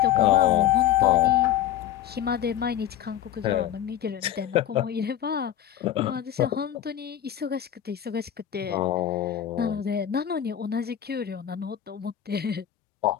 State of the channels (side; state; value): right; quieter; 11.0 dB